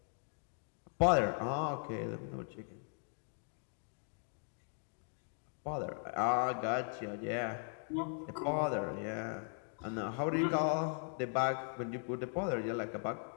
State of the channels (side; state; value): right; silent; 52 dB below the other